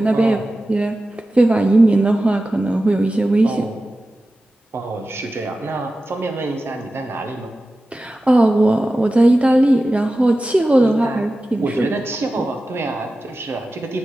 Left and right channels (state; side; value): normal; both; correlation 0.94